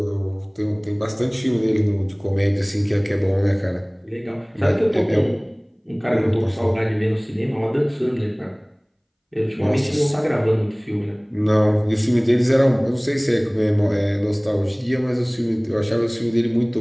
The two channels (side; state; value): both; identical; correlation 1.00